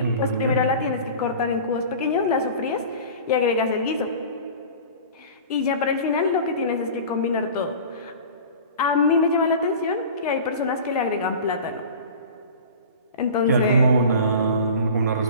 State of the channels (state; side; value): inverted; both; correlation -0.38